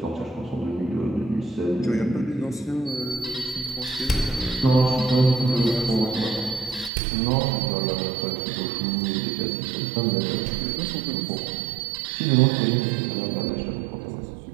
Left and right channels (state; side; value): drops out; left; at 6.9 s